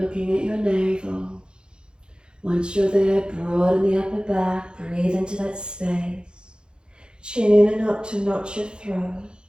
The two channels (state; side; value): late; left; 0.049 ms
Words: at your navel. Once you're there, broaden the upper back, breathe into that space. Chin in and up to notch your throat.